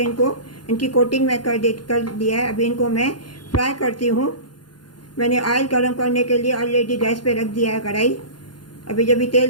इनकी कोटिंग मैं कर दिया है। अभी इनको मैं फ्राई करती हूँ। मैंने ऑयल गरम करने के लिए ऑलरेडी गैस पे रख दिया है कढ़ाई। अभी जब भी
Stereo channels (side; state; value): right; late; 0.71 ms